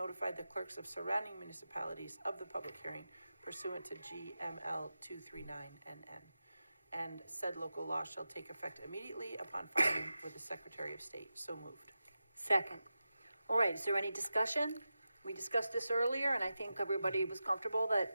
the clerks of surrounding municipalities of the public hearing pursuant to GML 239NN. And said local law shall take effect immediately upon filing with the Secretary of State. So moved. Second. All right, is there any discussion? We discussed this earlier, and I think everybody was comfortable that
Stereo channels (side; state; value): both; inverted; correlation -0.92